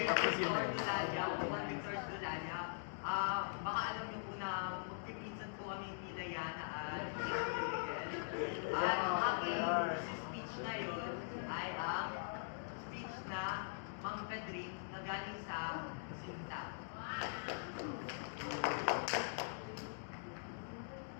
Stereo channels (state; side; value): silent; right; digital silence